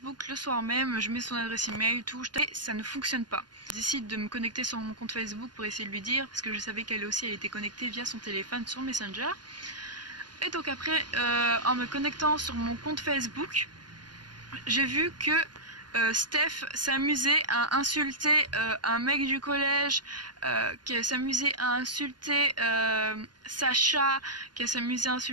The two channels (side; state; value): left; late; 0.70 ms